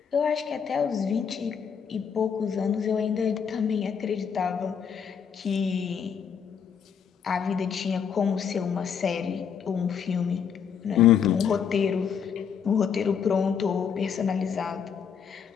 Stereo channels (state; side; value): quieter; right; 7.2 dB